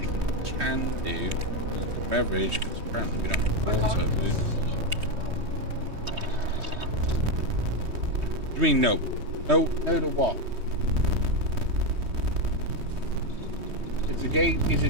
can do is the beverage, because apparently we don't have water. But you mean no? No, no to what? Is the game? Is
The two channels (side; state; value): left; late; 3.2 ms